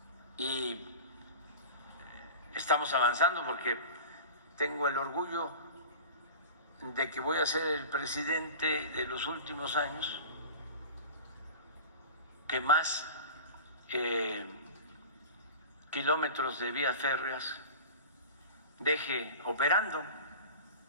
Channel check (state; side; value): inverted; both; correlation -0.34